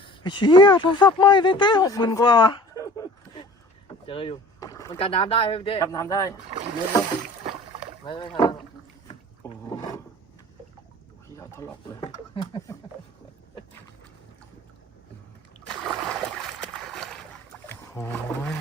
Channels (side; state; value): both; normal; correlation 0.44